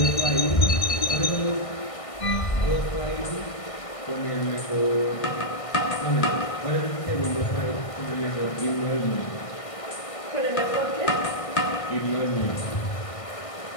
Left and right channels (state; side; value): late; right; 1.6 ms